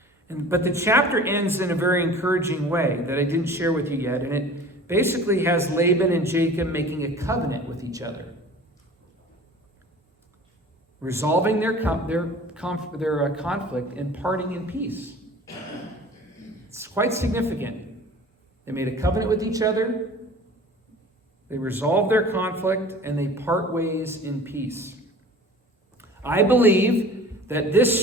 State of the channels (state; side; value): normal; both; correlation 0.43